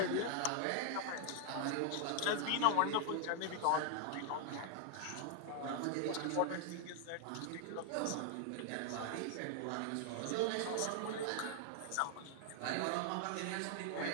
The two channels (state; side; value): different; both; correlation 0.00